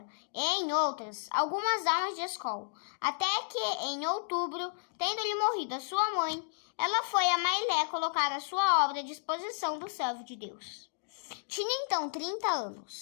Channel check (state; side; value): silent; right; digital silence